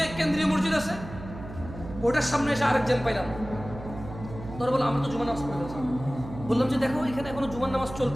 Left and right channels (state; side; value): noise; right; hum, 12 dB below the sound